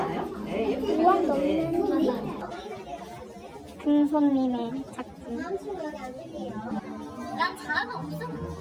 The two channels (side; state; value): both; identical; correlation 1.00